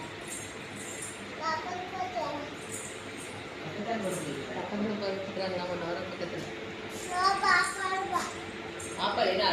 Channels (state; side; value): identical; both; correlation 1.00